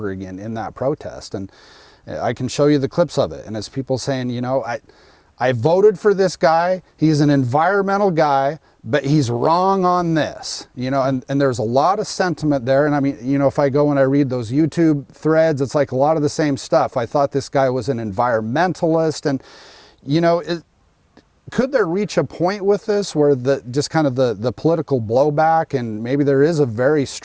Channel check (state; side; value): identical; both; correlation 1.00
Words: again in that protest. And I can show you the clips of it. And it's people saying, you know, I voted for this guy. He's an environmental guy, but he's wrong on this, you know, and there's a lot of sentiment there. And I mean, you know, if I go and I read those YouTube threads, it's like a lot of the same stuff. I thought this guy was an environmentalist, and, you know, could there reach a point with this where just kind of the political blowback, and maybe there is a very